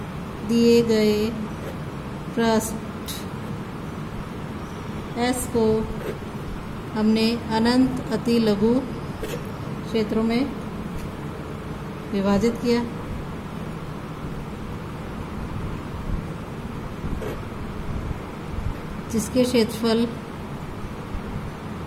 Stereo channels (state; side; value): identical; both; correlation 1.00